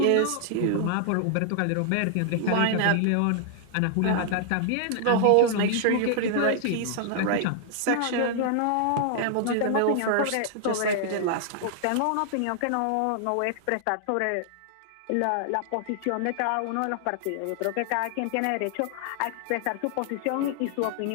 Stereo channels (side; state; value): both; different; correlation -0.01